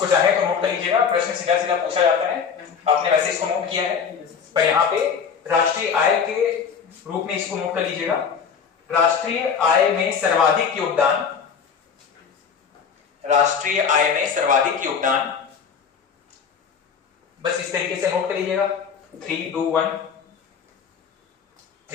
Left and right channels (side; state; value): right; quieter; 6.6 dB